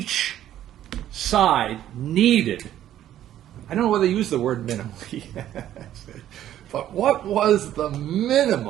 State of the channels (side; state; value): left; quieter; 11.9 dB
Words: side needed. I don't know whether they use the word minimally, but what was the